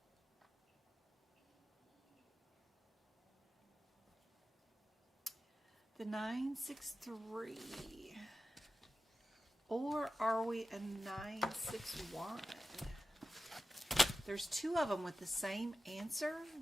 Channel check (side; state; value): both; normal; correlation 0.92